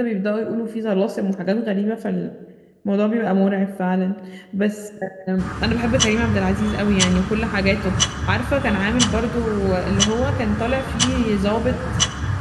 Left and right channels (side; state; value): both; identical; correlation 1.00